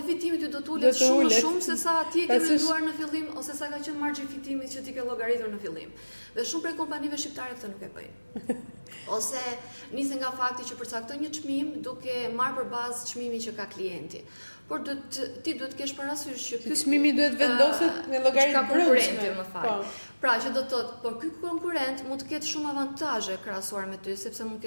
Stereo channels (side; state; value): both; inverted; correlation -1.00